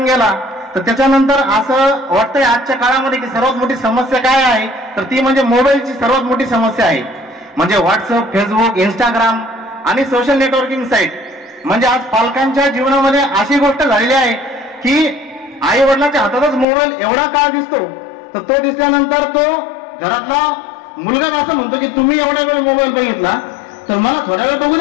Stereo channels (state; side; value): drops out; right; at 16.7 s